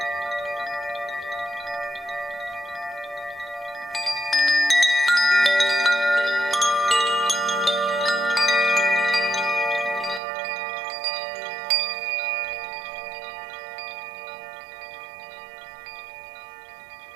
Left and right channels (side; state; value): left; drops out; at 10.2 s